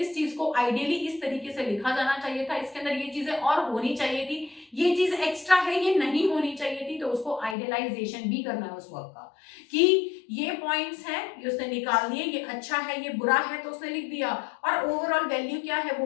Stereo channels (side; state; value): right; drops out; at 7.6 s